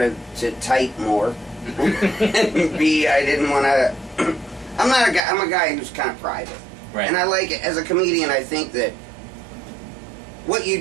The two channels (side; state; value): left; drops out; at 5.2 s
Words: to type more, and B, I didn't want to, I'm a guy who's kind of private, right. And I like, as a comedian, I think that what you